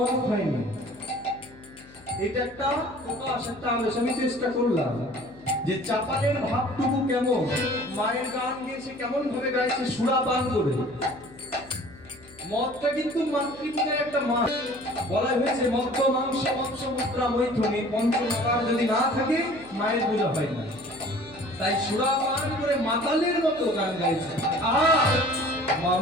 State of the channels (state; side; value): noise; left; hum, 23 dB below the sound